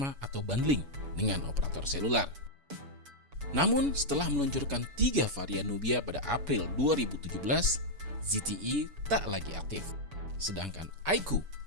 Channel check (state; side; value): late; left; 7.0 ms